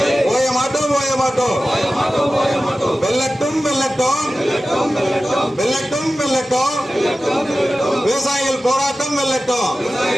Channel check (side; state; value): both; normal; correlation 0.95